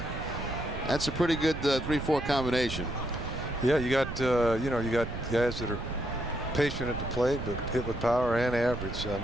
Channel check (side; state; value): right; noise; rumble, 7 dB below the sound